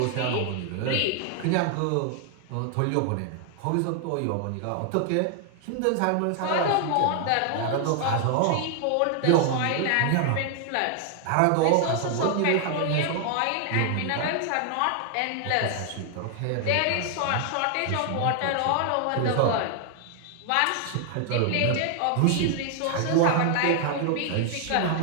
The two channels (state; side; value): different; both; correlation 0.00